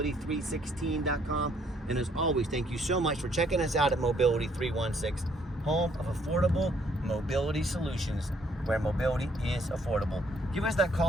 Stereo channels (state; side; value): normal; both; correlation 0.66